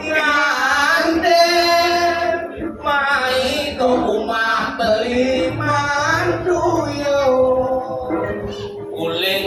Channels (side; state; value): both; identical; correlation 1.00